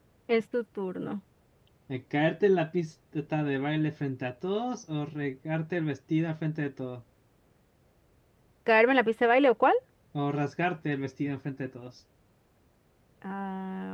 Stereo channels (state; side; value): identical; both; correlation 1.00